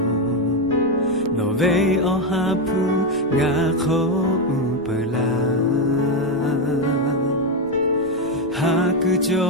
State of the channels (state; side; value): noise; right; rumble, 22 dB below the sound